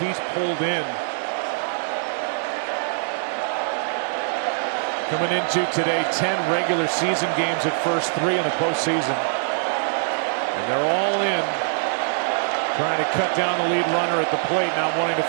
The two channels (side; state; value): left; silent; 63 dB below the other